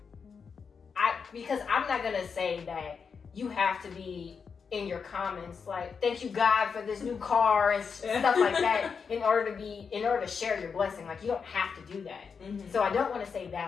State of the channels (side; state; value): right; quieter; 5.9 dB